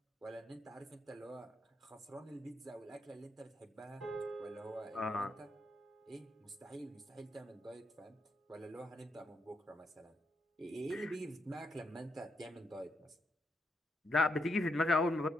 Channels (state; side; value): normal; both; correlation 0.80